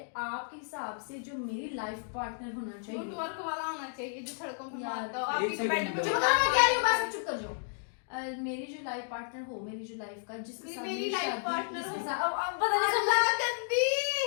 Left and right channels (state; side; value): silent; right; 56 dB below the other